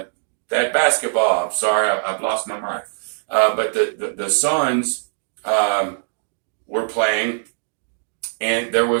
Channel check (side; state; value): left; silent; digital silence